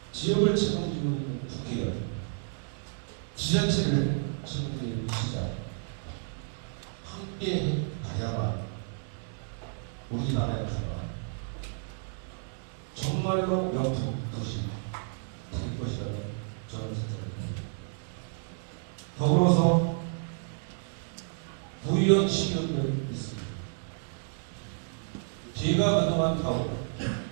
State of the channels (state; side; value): silent; left; 57 dB below the other